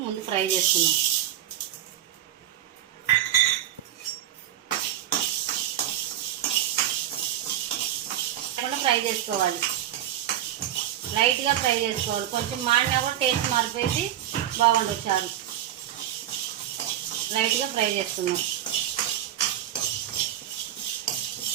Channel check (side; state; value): left; quieter; 11.8 dB